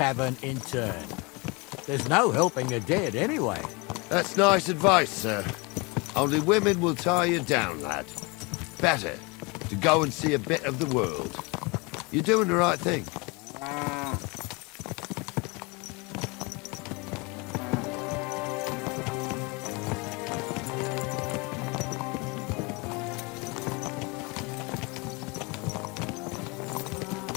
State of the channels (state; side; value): quieter; right; 28.0 dB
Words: in turn. There's no helping the dead anyway. That's nice advice, sir. Only women will tie you down, lad. Better to go and see a bit of the world. You're doing the right thing.